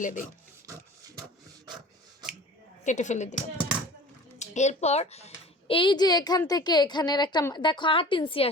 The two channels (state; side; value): normal; both; correlation 0.42